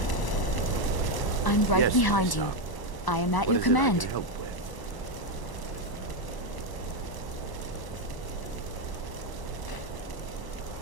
I'm right Yes, behind you. I am at your command. Help with?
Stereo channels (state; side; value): late; right; 1.0 ms